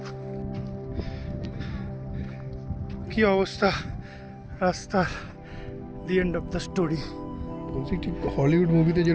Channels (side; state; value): both; identical; correlation 1.00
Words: কি অবস্থা, রাস্তার the end of the story. বলছি ঠিক হলিউড মুভিতে